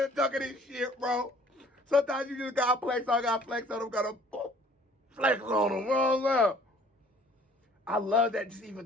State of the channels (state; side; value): normal; both; correlation 0.54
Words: ducking his shit, bro. Sometimes you just gotta flex on them, gotta flex on them. What's up? I love that just